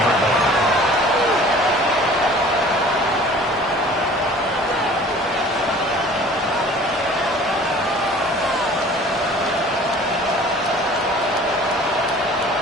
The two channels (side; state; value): both; normal; correlation 0.47